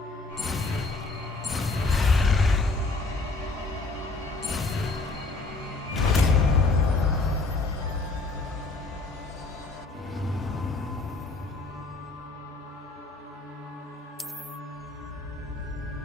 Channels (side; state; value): right; quieter; 3.4 dB